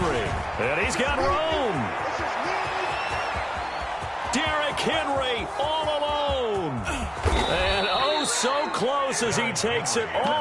And he's got room. Derrick Henry all alone. And oh, so close as he takes it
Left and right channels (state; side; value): identical; both; correlation 1.00